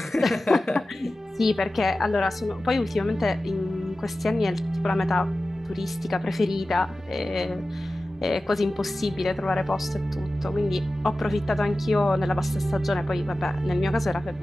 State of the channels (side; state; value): both; normal; correlation 0.95